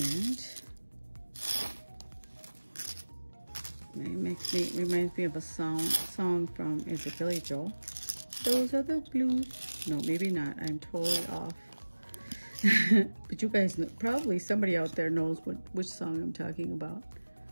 it reminds me of a song from, is it Billy Joel? Those are the blues. No, maybe not. I'm totally off. But you guys know, probably somebody out there knows which song I'm talking about.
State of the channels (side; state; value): both; inverted; correlation -1.00